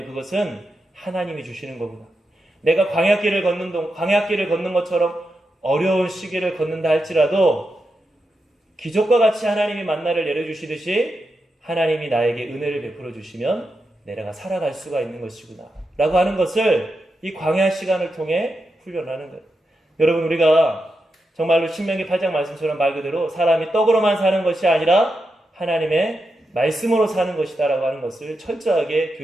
그것은 하나님이 주시는 거구나. 내가 광야길을 걷는 것처럼 어려운 시기를 걷는다 할지라도 기적과 같이 하나님이 만나를 내려주시듯이 하나님이 나에게 은혜를 베풀어 주시면 내가 살아갈 수가 있는 것이구나 라고 하는 것을 이 광야 시간을 통해 훈련하는 거예요. 여러분, 우리가 정말로 신명기 8장 말씀처럼 말 그대로 사람이 떡으로만 사는 것이 아니라 하나님의 말씀으로 사는 것이다 라고 하는 것을 철저하게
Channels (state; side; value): normal; both; correlation 0.87